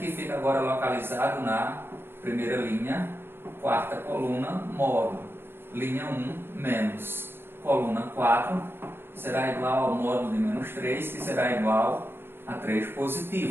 fica agora localizado na primeira linha, quarta coluna, módulo, linha 1 menos coluna 4, será igual ao módulo de menos 3, que será igual a 3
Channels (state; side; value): late; left; 0.11 ms